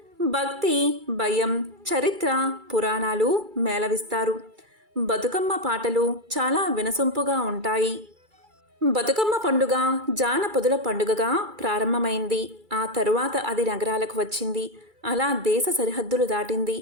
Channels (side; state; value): left; late; 2.3 ms